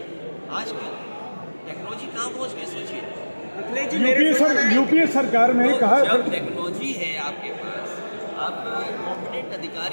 आज की टेक्नोलॉजी कहाँ पहुँच गई, सोचिए। यूपीए सरकार में तो कहा, जब टेक्नोलॉजी है आपके पास, आप कॉम्पिटेंट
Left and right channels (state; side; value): inverted; both; correlation -1.00